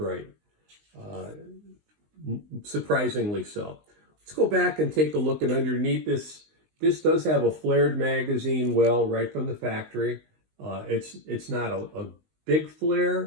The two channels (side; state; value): left; late; 19 ms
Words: Surprisingly so. Let's go back and take a look at underneath this. This does have a flared magazine well right from the factory. It's not a big